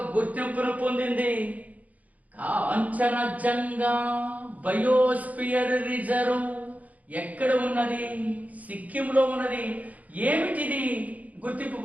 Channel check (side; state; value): left; late; 0.074 ms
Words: గుర్తింపును పొందింది. కాంచనజంగా బయోస్పియర్ రిజర్వ్ ఎక్కడ ఉన్నది? సిక్కింలో ఉన్నది. ఏమిటిది గుర్తింపు